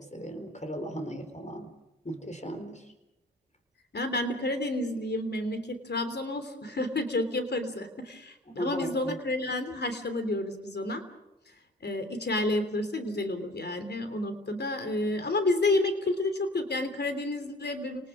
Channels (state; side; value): normal; both; correlation 0.47